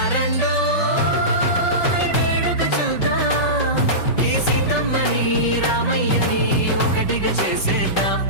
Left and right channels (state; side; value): late; right; 5.3 ms